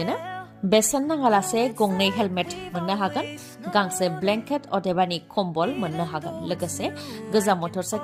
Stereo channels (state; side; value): identical; both; correlation 1.00